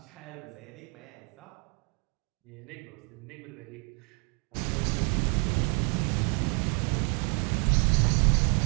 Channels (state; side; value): quieter; left; 34.3 dB